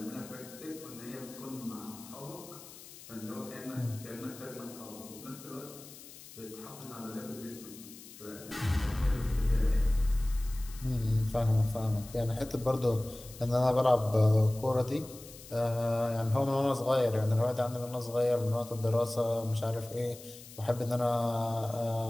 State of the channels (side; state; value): left; noise; hiss, 17 dB below the sound